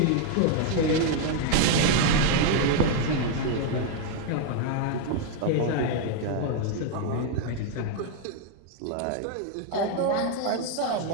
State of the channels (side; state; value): both; different; correlation 0.01